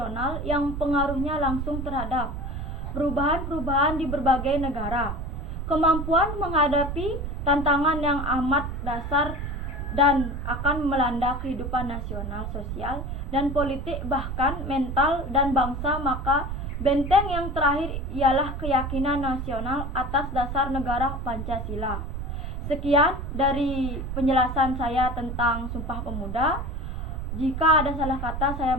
yang pengaruhnya langsung terhadap perubahan-perubahan di berbagai negara. Kemampuan menghadapi tantangan yang amat dasar dan akan melanda kehidupan nasional, sosial, dan politik, bahkan mental dan bangsa, maka benteng yang terakhir ialah keyakinan nasional atas dasar negara Pancasila. Sekian dari penjelasan saya tentang Sumpah Pemuda. Jika ada salah kata, saya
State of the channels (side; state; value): right; noise; rumble, 5 dB below the sound